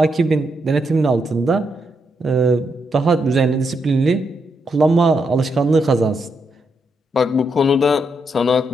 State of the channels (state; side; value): normal; both; correlation 0.80